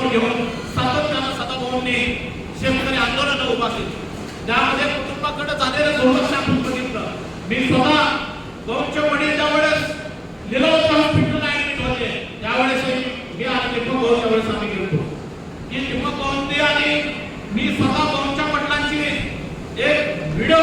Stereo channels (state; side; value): identical; both; correlation 1.00